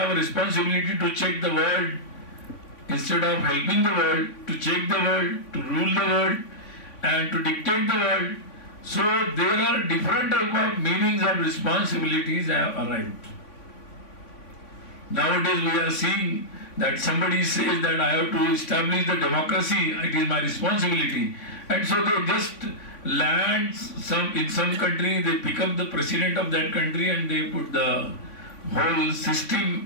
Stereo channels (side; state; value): right; late; 3.5 ms